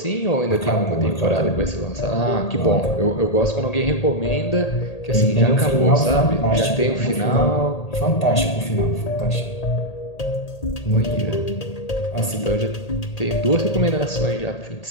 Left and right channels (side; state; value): right; late; 1.8 ms